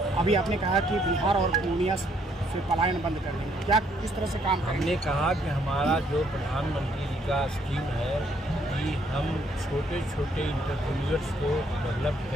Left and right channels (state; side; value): normal; both; correlation 0.68